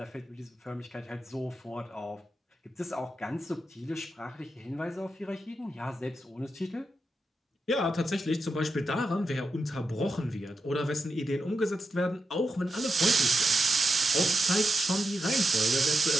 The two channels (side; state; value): both; normal; correlation 0.87